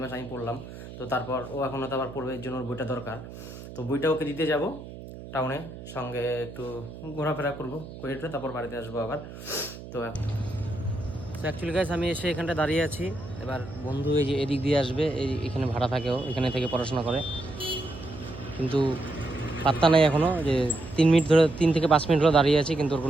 মাস আমি পড়লাম, তো তারপর ও এখন তো আবার পড়বে, এর জন্য ওর বইটা দরকার। তো বইটা ওকে দিতে যাব টাউনে, সঙ্গে একটু ঘোরাফেরা করবো করে তারপর বাড়িতে আসবো আবার। তো অ্যাকচুয়ালি গাইস আমি এসে এখানটা দাঁড়িয়ে আছি, এবার বন্ধু এই যে এদিক দিয়ে আসবে, এখানে ভাড়া থাকেও, এখানে থেকে পড়াশোনা করে, কিন্তু পাত্তা নাই এখনও, যে 3 মিনিট ধরে 3 থেকে 5 মিনিট ধরে দাঁড়িয়ে আছি, কিন্তু ওর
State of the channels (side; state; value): right; noise; hum, 13 dB below the sound